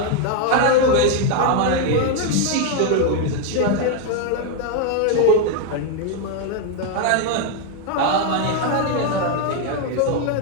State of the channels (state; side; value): different; both; correlation 0.01